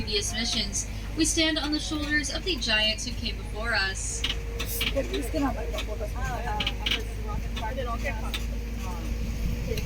missions. We stand on the shoulders of the giants who came before us.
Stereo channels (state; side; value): identical; both; correlation 1.00